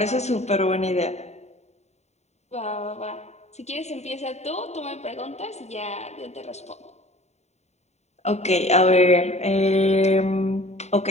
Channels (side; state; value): right; late; 0.32 ms